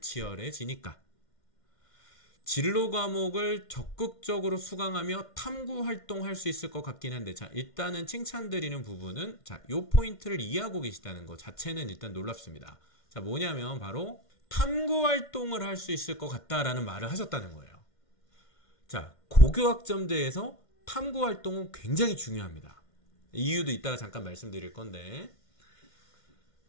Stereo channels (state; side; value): late; right; 1.5 ms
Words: 치열해지니까. 진로 과목을 적극적으로 수강하며 탐구 활동할 수 있을 것 같긴 한데, 자, 일단은 칭찬드리는 부분은, 자, 요 포인트를 이해하고 계시다는 것 자체는 일단 놀랍습니다. 자, 뭐냐면 바로 탐구 활동을 할 수 있을 것 같다라는 말을 하셨다는 거예요. 자, 고교학점제에서 탐구 활동은 굉장히 중요합니다. 이유도 이따가 잠깐 말씀드릴 건데,